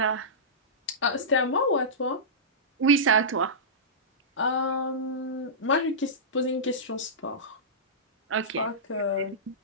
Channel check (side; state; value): both; normal; correlation -0.17